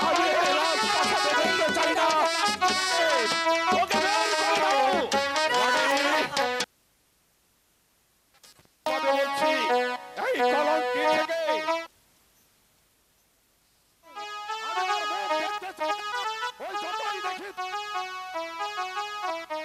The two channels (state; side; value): identical; both; correlation 1.00